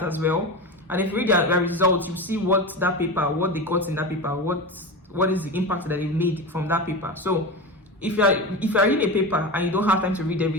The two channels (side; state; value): both; normal; correlation 0.24